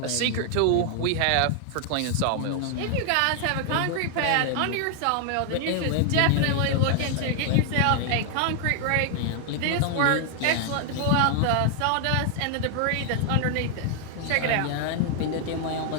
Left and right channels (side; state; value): both; different; correlation 0.00